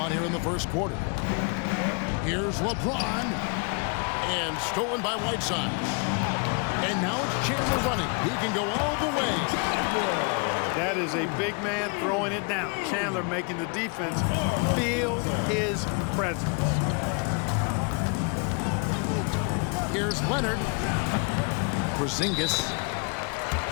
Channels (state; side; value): quieter; right; 34.7 dB